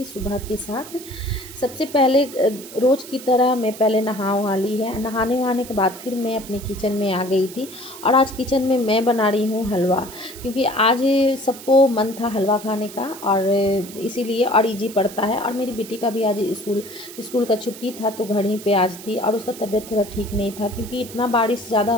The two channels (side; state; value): right; noise; hiss, 15 dB below the sound